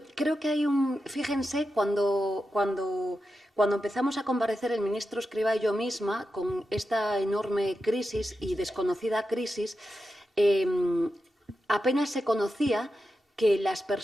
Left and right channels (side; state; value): both; normal; correlation 0.89